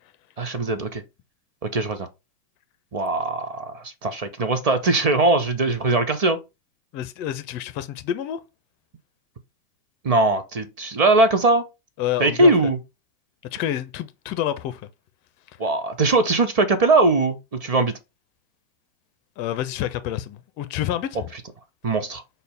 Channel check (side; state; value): left; late; 1.7 ms